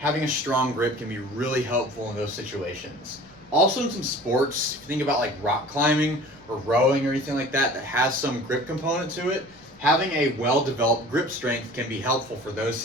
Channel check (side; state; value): left; noise; rumble, 29 dB below the sound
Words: a strong grip can be really helpful in those situations. Also in some sports, if you think about rock climbing or rowing or anything like that that has some grip component to it, having a well-developed grip strength can be helpful for those